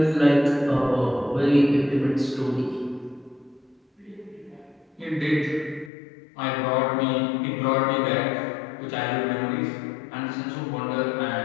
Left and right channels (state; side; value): drops out; right; at 5.9 s